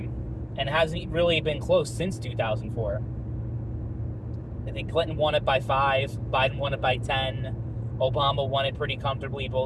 and hasn't really been close since 2004. I think Clinton won it by 5, Biden won it by 10, Obama won it pretty comfortably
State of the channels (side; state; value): both; identical; correlation 1.00